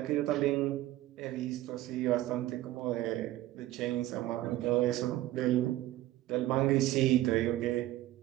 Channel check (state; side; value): quieter; left; 15.4 dB